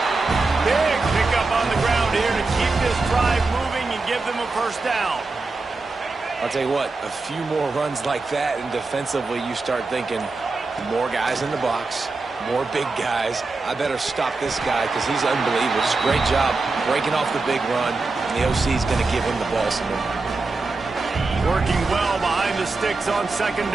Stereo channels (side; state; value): left; quieter; 3.7 dB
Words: Big pickup on the ground here to keep this drive moving and give them a first down. I'll tell you what, a few more runs like that, and defensively you start thinking more guys in the box, more big guys. I better stop this guy because he's unbelievable. Just a great job breaking off the big run, and the OC is going to give him the ball some more. Working well behind the sticks on 2nd